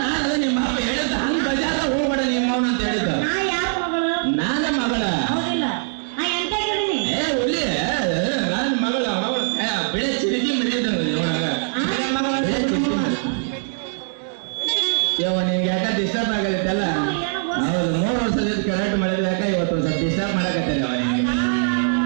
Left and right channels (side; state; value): left; silent; digital silence